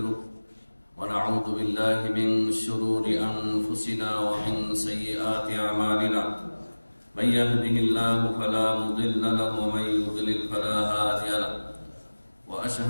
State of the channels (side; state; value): both; inverted; correlation -1.00